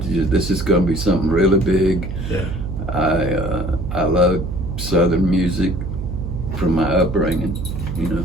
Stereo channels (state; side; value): noise; right; hum, 6 dB below the sound